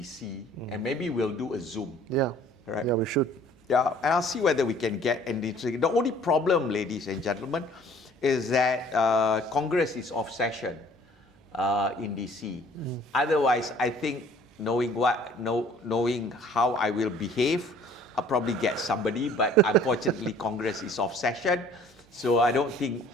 and maybe we'll do a Zoom. Yeah. Right? Yeah, we should. Yeah, and I'll see whether we can get anything. The only problem, ladies and gentlemen, is that Congress is off session in DC. Otherwise, I think knowing how I will behave, I'll probably get somebody, but unfortunately Congress is off session, so I don't think,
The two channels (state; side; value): normal; both; correlation 0.54